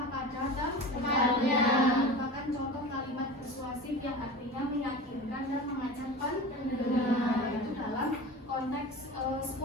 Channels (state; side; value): normal; both; correlation 0.33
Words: pada tempatnya. Merupakan contoh kalimat persuasif yang artinya meyakinkan dan mengajak pendengar. Itu dalam konteks